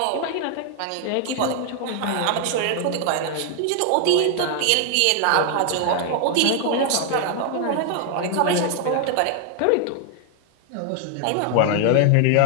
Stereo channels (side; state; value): both; different; correlation 0.00